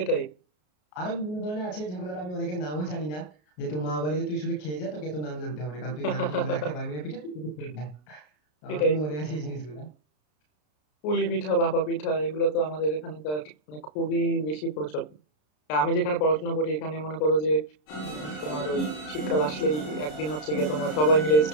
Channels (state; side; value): late; right; 33 ms